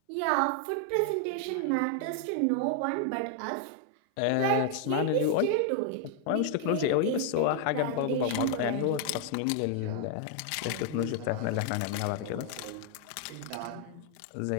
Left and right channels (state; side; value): different; both; correlation 0.00